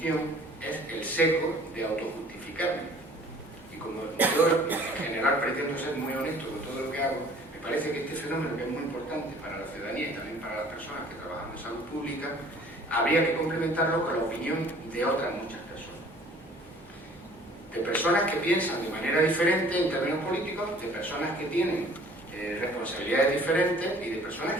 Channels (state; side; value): normal; both; correlation 0.52